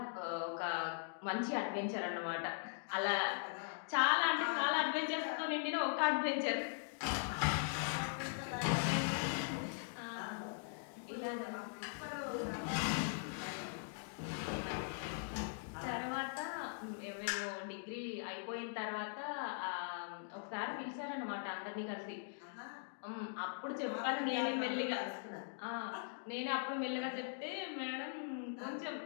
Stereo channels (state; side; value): silent; right; digital silence